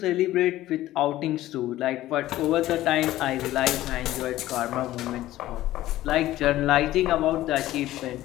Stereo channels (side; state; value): right; quieter; 15.1 dB